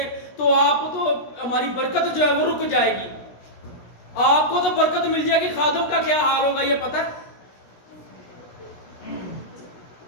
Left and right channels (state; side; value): late; right; 17 ms